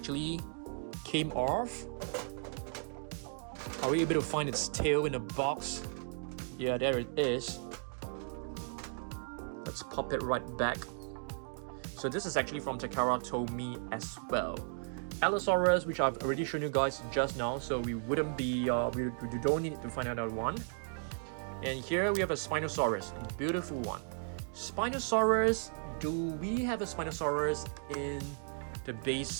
came off. Are we able to find its tail in a box? Yeah, there it is. Let's pop it right back. So this is actually from Takara Tomy as well. Allosaurus, which I've already shown you guys just now, so we wouldn't be, we don't need to find another one. And here we have a Spinosaurus, beautiful one. Spinosaurus, do we have a Spinosaurus in the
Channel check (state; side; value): silent; left; 54 dB below the other